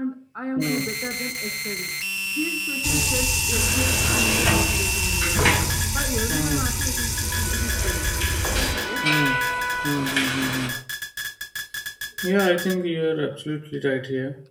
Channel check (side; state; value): both; identical; correlation 1.00